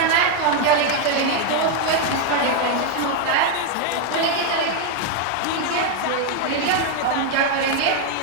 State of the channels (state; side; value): different; both; correlation 0.01